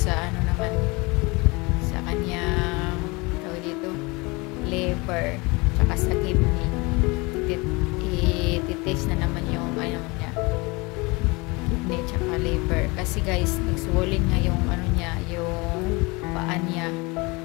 ano naman, sa kanyang tawag dito, liver, tsaka sa kidney. I-test na naman yung ano niya, kidney tsaka liver. Kasi guys, nag-swollen nga yung ano niya, yung paa niya.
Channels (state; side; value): quieter; right; 25.9 dB